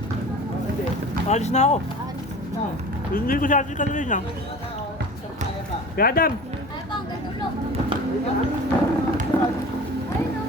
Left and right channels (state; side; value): normal; both; correlation 0.39